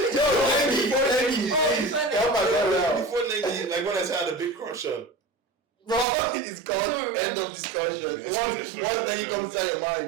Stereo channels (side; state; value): left; drops out; at 6.1 s